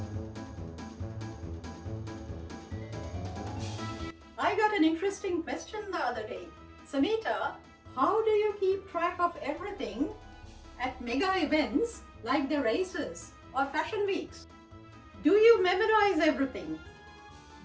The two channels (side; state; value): both; identical; correlation 1.00